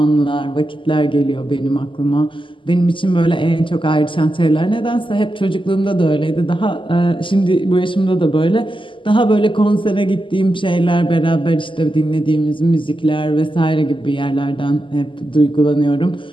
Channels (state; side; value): late; right; 0.25 ms